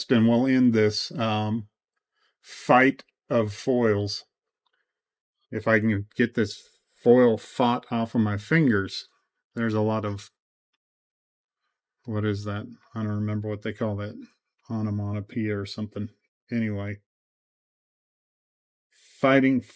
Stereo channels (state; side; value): identical; both; correlation 1.00